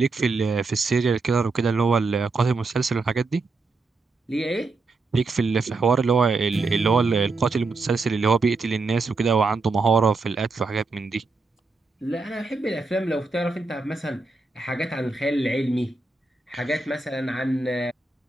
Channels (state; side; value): quieter; left; 3.7 dB